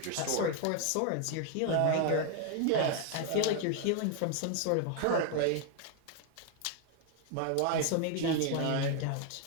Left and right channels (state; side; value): different; both; correlation 0.01